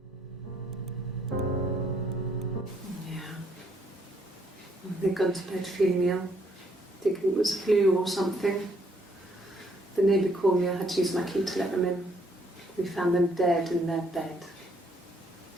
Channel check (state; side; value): normal; both; correlation 0.69